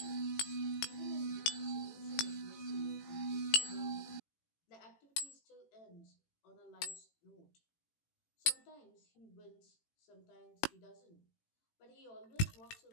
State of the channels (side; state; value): right; late; 18 ms